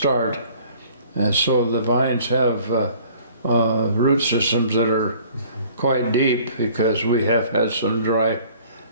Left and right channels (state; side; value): inverted; both; correlation -0.53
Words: And so the vines have root systems that are quite deep, because we have had some dry